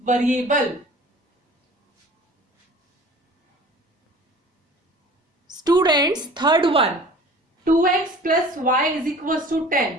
variable. Students, third one, 2x plus y is equals to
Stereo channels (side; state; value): both; normal; correlation 0.45